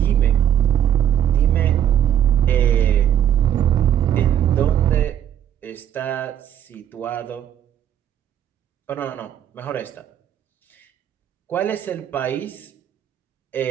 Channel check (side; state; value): left; quieter; 10.3 dB